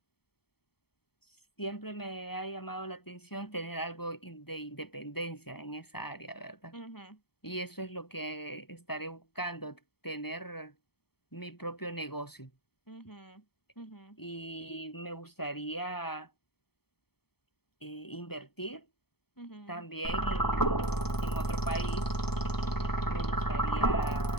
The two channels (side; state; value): right; late; 0.96 ms